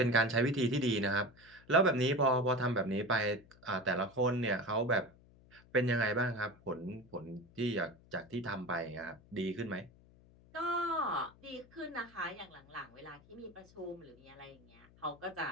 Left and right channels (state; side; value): noise; left; hum, 26 dB below the sound